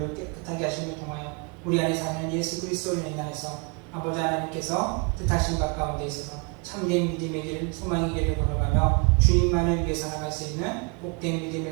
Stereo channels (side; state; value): left; quieter; 32.0 dB